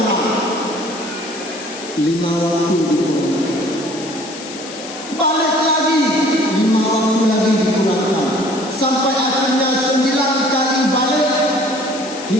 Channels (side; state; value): left; noise; hiss, 13 dB below the sound